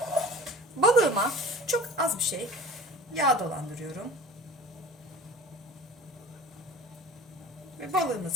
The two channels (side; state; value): both; normal; correlation 0.41